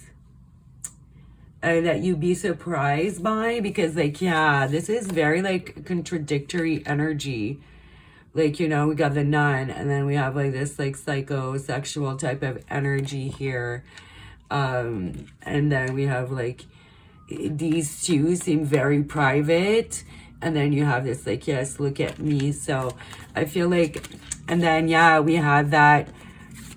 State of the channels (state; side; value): identical; both; correlation 1.00